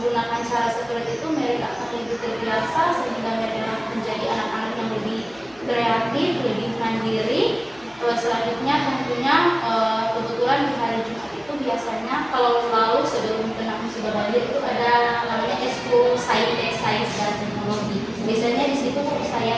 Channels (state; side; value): noise; left; hum, 28 dB below the sound